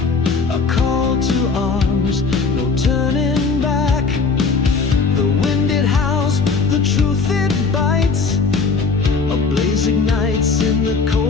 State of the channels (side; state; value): right; quieter; 4.7 dB